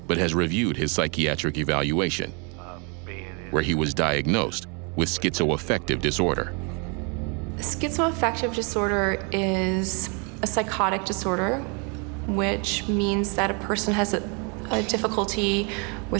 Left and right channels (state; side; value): quieter; left; 34.3 dB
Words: but has reviewed his psychiatric evaluation, where he was diagnosed with schizoaffective disorder. Schizoaffective disorder is a psychotic disorder, which means that a person has a difficulty